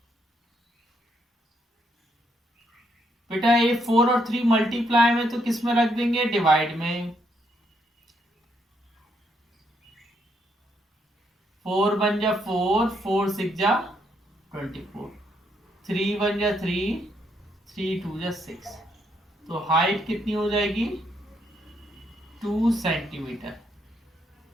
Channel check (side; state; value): both; normal; correlation 0.75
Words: बेटा ये 4 और 3 मल्टीप्लाई में तो किस में रख देंगे, डिवाइड में। 4 बन जा 4, 4 6 जा 24, 3 बन जा 3, 3 2 जा 6, तो हाइट कितनी हो जाएगी 2 सेंटीमीटर।